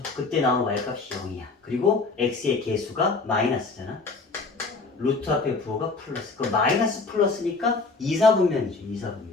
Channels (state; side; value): quieter; right; 3.9 dB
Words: 그때 나온 y값이 0이야. 그리고 x의 개수가 마이너스잖아. 루트 앞에 부호가 플러스. 그 마이너스 플러스니까 2사분면이죠.